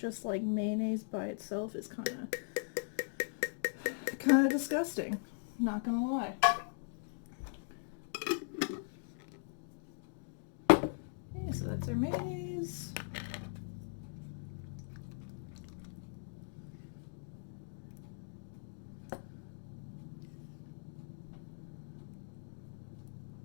like mayonnaise by itself is kind of disgusting. Not gonna lie. Okay, so that's our mayonnaise.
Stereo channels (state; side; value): silent; right; digital silence